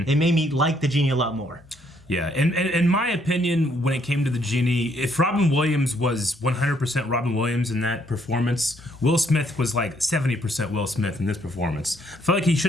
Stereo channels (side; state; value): both; normal; correlation 0.69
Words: It made me like the Genie a lot more. Yeah, and in my opinion, when it came to the Genie, if Robin Williams was 100% Robin Williams in that performance, Will Smith was 70% Will Smith in this performance. I felt like he